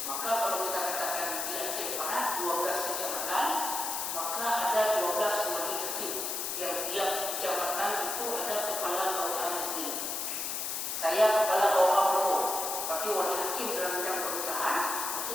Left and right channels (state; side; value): noise; left; hiss, 2 dB below the sound